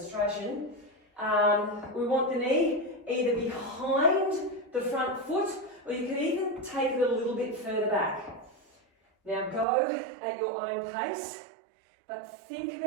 we want the knee either behind the front foot, or you can even take it a little bit further back. Now go at your own pace, but think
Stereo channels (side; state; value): left; drops out; at 9.7 s